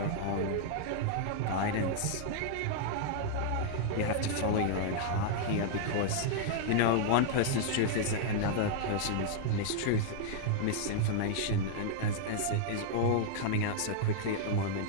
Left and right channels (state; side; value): different; both; correlation -0.01